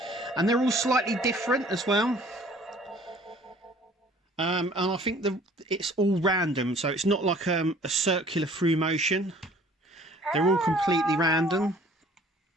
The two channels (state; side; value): normal; both; correlation 0.53